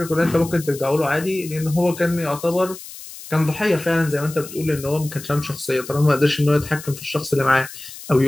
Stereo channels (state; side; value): noise; left; hiss, 14 dB below the sound